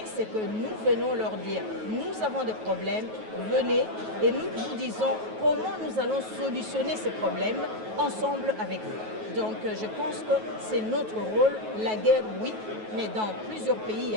c'est que nous venons leur dire, nous avons des problèmes, venez, et nous vous disons comment nous allons solutionner ces problèmes ensemble avec vous. Donc, je pense que c'est notre rôle. La guerre, oui, mais dans plusieurs pays, il y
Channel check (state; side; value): late; left; 9.3 ms